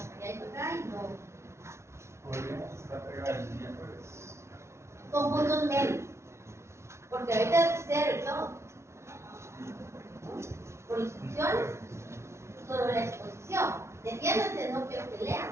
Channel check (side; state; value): left; late; 0.13 ms